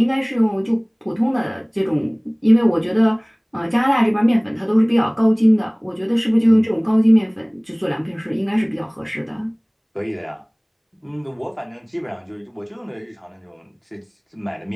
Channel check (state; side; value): identical; both; correlation 1.00